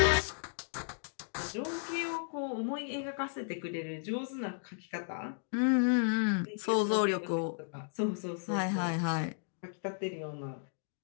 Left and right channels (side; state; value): right; silent; digital silence